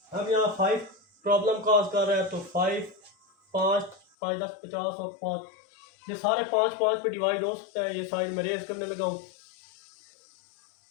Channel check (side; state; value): right; drops out; at 4.0 s